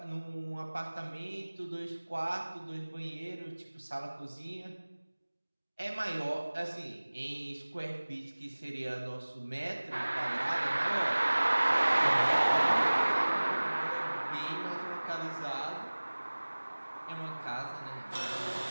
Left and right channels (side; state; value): both; inverted; correlation -1.00